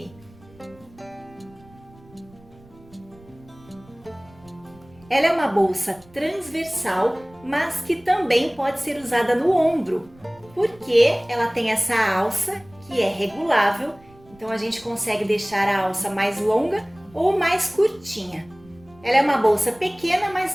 Ela é uma bolsa transversal, mas que também pode ser usada no ombro, porque ela tem essa alça que é regulável, então a gente consegue deixar a alça mais longa ou mais curtinha. Ela é uma bolsa pequena, mas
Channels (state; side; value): noise; right; rumble, 25 dB below the sound